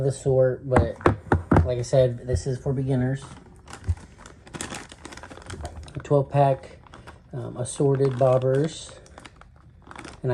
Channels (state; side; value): identical; both; correlation 1.00